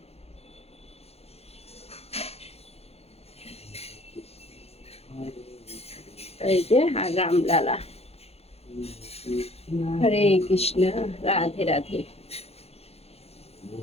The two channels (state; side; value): late; right; 0.29 ms